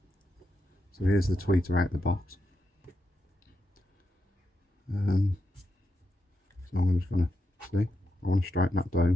So here's the tweeter out the box. So I'm just going to see. I want to straighten that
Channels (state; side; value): normal; both; correlation 0.85